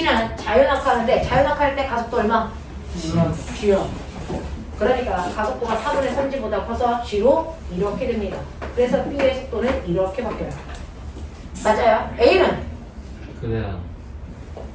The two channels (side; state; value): both; identical; correlation 1.00